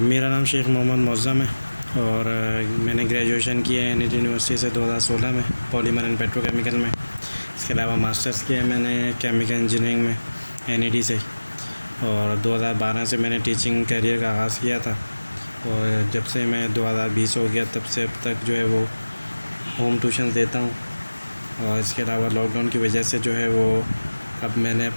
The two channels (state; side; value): inverted; both; correlation -1.00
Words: मेरा नाम शेख मोहम्मद मुअज़्ज़म है और मैंने ग्रेजुएशन किया है एनईटी यूनिवर्सिटी से 2016 में पॉलीमर एंड पेट्रोकेमिकल में। इसके अलावा मास्टर्स किया है मैंने केमिकल इंजीनियरिंग में एनईटी से, और 2012 से मैंने टीचिंग करियर का आगाज़ किया था। और जब से मैं 2020 हो गया तब से अब तक जो है वो होम ट्यूशन देता हूँ। और इसके अलावा लॉकडाउन की वजह से जो है वो अब मैंने